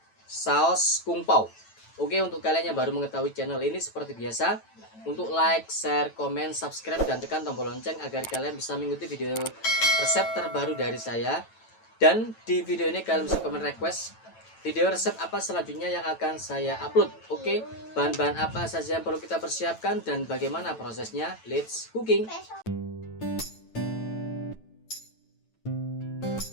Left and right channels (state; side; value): late; right; 9.1 ms